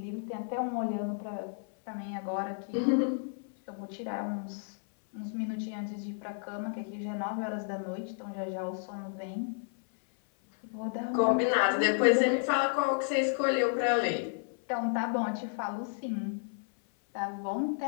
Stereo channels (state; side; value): silent; right; 56 dB below the other